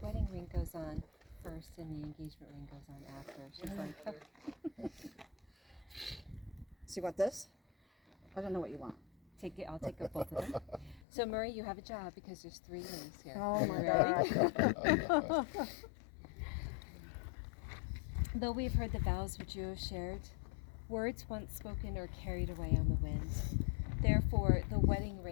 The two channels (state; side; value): drops out; right; at 11.0 s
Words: wedding ring goes on first, and the engagement ring goes on after. She's like, So you want this? I don't know what you want. take it. I'll take up both of them. So Murray, you have a job because there's 3 rings here. Oh You my ready? God. Though we've heard the vows which you have shared, words once spoken are carried away on the wind. Therefore, the wedding